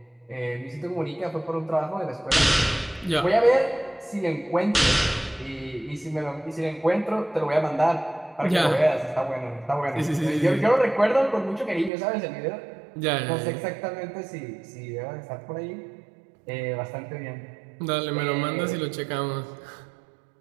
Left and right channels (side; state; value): left; drops out; at 11.9 s